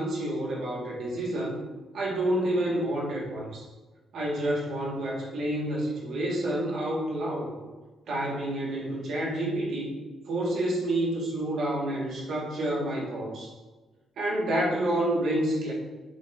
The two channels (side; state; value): both; normal; correlation 0.72